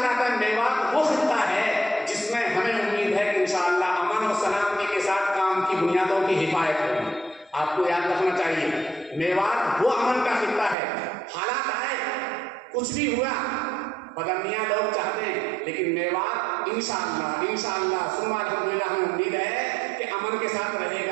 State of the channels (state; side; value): drops out; left; at 10.8 s